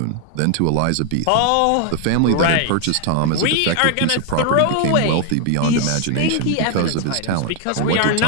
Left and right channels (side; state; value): both; different; correlation 0.00